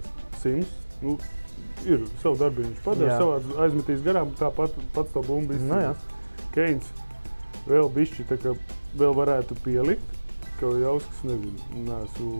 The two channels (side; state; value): both; inverted; correlation -1.00